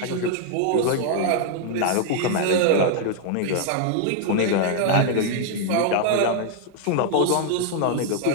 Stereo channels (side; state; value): both; different; correlation 0.00